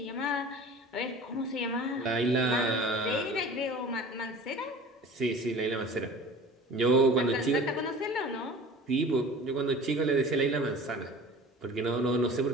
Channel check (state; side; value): normal; both; correlation 0.41